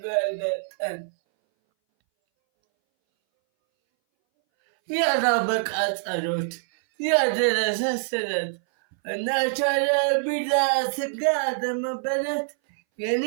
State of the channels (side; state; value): left; silent; 61 dB below the other